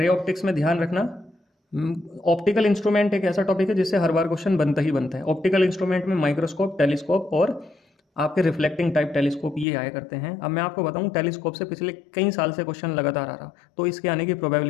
में ध्यान रखना, ऑप्टिकल इंस्ट्रूमेंट एक ऐसा टॉपिक है जिससे हर बार क्वेश्चन बनता ही बनता है। ऑप्टिकल इंस्ट्रूमेंट में माइक्रोस्कोप, टेलीस्कोप और आपके रिफ्लेक्टिंग टाइप टेलीस्कोप ये आया करते हैं। अब मैं आपको बताऊं, टेलीस्कोप से पिछले कई साल से क्वेश्चन लगातार आ रहा, तो इसके आने की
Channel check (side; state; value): right; drops out; at 9.7 s